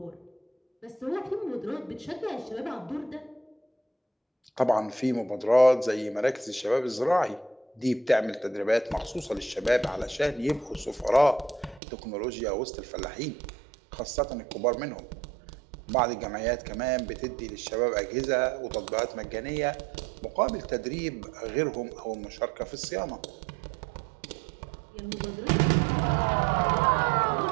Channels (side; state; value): left; drops out; at 11.8 s